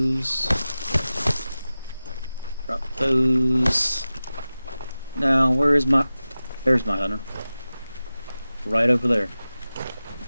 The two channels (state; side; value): inverted; both; correlation -0.95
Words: Drop those. Now, where is my... There's my hunter. Right over there.